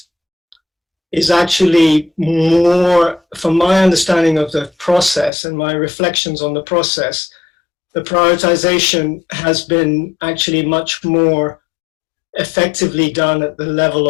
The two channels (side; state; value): right; drops out; at 5.3 s